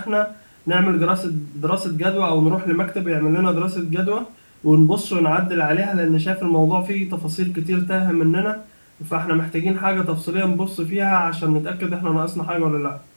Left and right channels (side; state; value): both; inverted; correlation -1.00